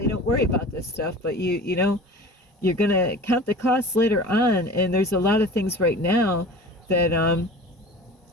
don't worry about this stuff, but you're going to count the costs later on. And there's a lot of things right now that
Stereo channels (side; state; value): both; normal; correlation 0.39